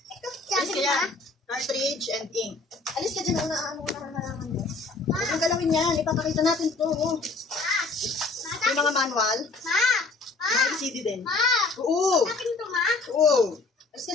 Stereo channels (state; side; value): quieter; right; 3.8 dB